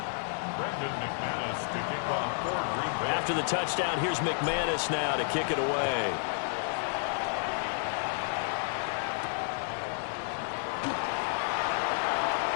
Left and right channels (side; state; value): right; silent; digital silence